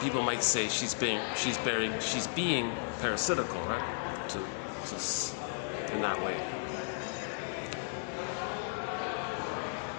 might say she's being parasitical, right? To in that way.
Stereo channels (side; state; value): right; silent; digital silence